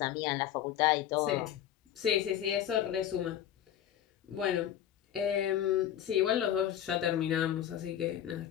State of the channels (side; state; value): right; quieter; 10.8 dB